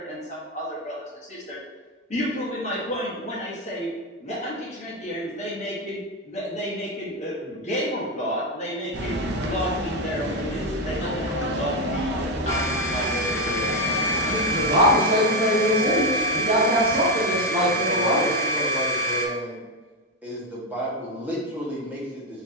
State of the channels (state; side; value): normal; both; correlation 0.09